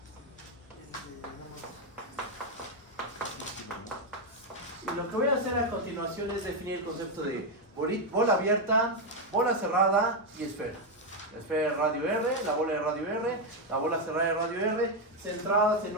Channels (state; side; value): normal; both; correlation 0.04